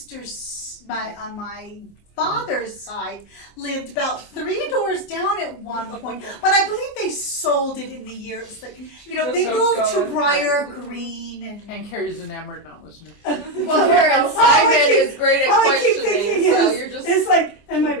on my father's side, lived about 3 doors down at one point. But I believe they sold it in the years. Like, you know, they Just moved to going. Briar Green And Carrie's enamored, not listening. Well, Simon is great at all I keep questioning, thinking so is, you're just. it's like, and my keeping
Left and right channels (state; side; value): late; right; 24 ms